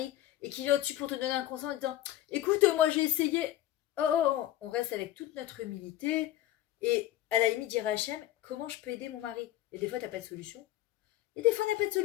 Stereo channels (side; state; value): right; quieter; 13.7 dB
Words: et qu'il vient au-dessus pour te donner un conseil en disant, écoute, moi j'ai essayé. Oh, on reste avec toute notre humilité et à la limite dire à Hachem, comment je peux aider mon mari? Et des fois, tu n'as pas de solution. Et des fois, on n'a pas de